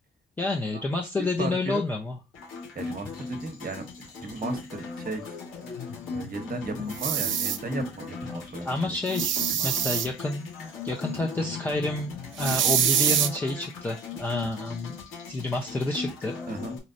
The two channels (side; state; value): both; normal; correlation 0.50